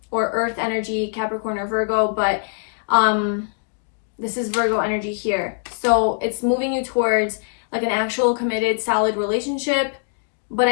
or Earth energy, Capricorn or Virgo, but this is Virgo energy here. So it's moving you towards like an actual committed, solid relationship. But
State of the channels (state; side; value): silent; right; digital silence